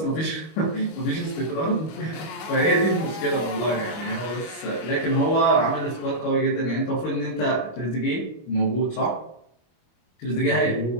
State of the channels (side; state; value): right; late; 25 ms